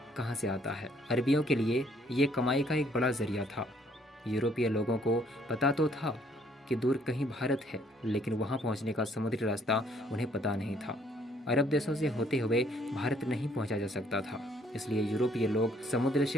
कहां से आता है। अरबियों के लिए ये कमाई का एक बड़ा जरिया था। यूरोपीय लोगों को पता तो था कि दूर कहीं भारत है, लेकिन वहां पहुंचने का समुद्री रास्ता उन्हें पता नहीं था। अरब देशों से होते हुए भारत नहीं पहुंचा जा सकता था, इसलिए यूरोपीय लोग समुद्र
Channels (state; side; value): normal; both; correlation 0.64